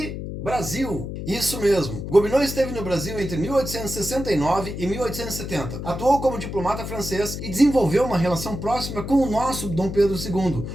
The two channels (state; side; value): noise; left; hum, 7 dB below the sound